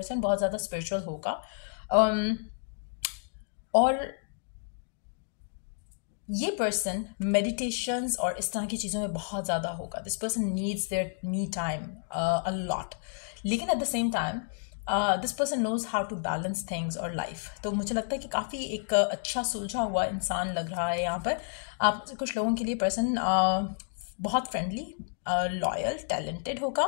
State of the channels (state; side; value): silent; right; digital silence